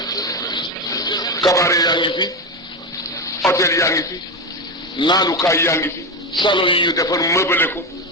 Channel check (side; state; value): both; normal; correlation 0.15